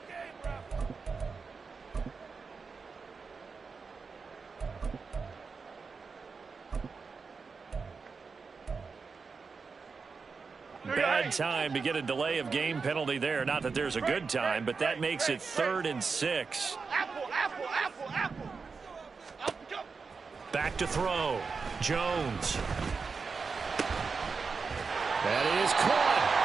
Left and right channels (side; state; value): left; quieter; 4.9 dB